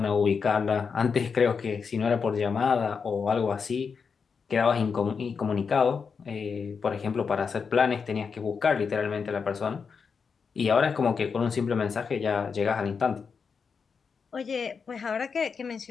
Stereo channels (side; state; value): right; quieter; 5.7 dB